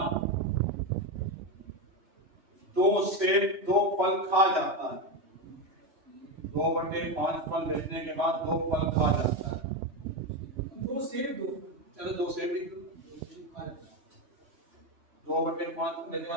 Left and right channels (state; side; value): late; left; 3.0 ms